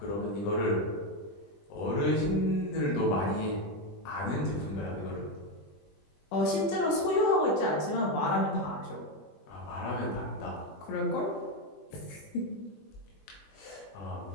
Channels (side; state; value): right; late; 20 ms